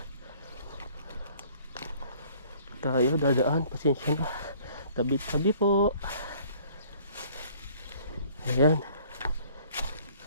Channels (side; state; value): both; inverted; correlation -0.55